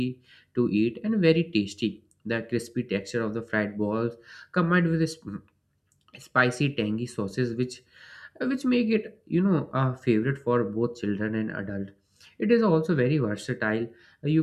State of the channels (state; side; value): identical; both; correlation 1.00